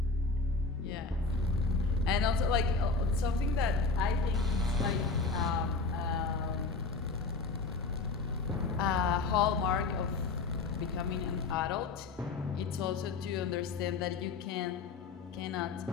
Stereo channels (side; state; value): right; quieter; 4.0 dB